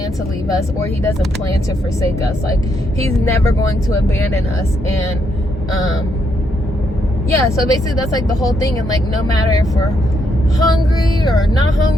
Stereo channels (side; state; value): both; normal; correlation 0.77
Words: to leave us, or he doesn't plan to forsake us. Like, he's never going to abandon us. And yeah, so basically that's like the whole thing. And like, no matter if we're hungry or not